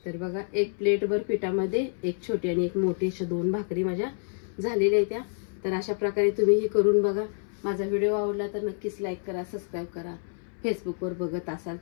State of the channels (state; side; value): silent; right; 59 dB below the other